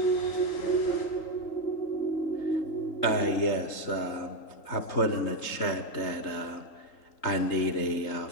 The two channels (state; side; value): late; right; 3.8 ms